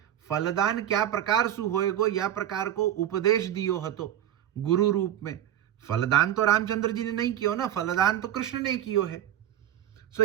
फलदान क्या प्रकार सु होएगो या प्रकार को उपदेश दियो हतो गुरु रूप में। फलदान तो रामचंद्र जी ने नहीं कियो ना, फलदान तो कृष्ण ने कियो है। सो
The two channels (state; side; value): quieter; left; 11.4 dB